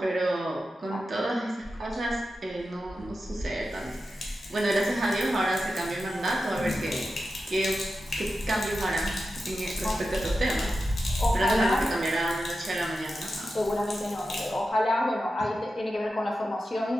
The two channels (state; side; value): normal; both; correlation 0.91